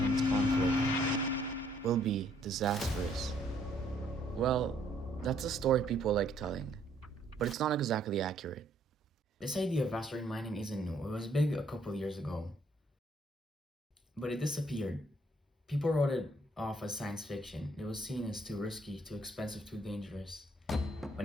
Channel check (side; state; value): both; normal; correlation 0.66